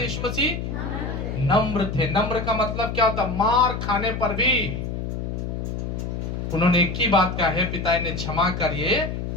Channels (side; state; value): left; noise; hum, 4 dB below the sound